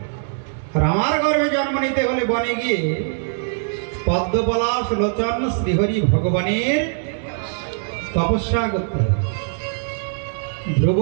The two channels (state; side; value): silent; left; digital silence